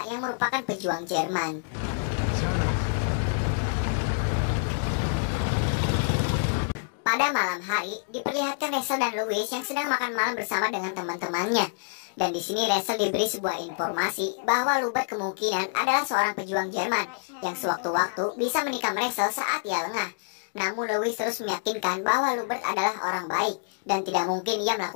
yang merupakan pejuang Jerman. Pada malam hari, diperlihatkan Rachel dan Louis yang sedang makan malam bersama dengan teman-temannya. Dan di sini Rachel diberi sebuah informasi bahwa Lubert kemungkinan adalah seorang pejuang Jerman yang sewaktu-waktu bisa menikam Rachel saat ia lengah. Namun Louis terus meyakinkan bahwa Lubert adalah orang baik dan tidak mungkin ia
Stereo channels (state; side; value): silent; right; digital silence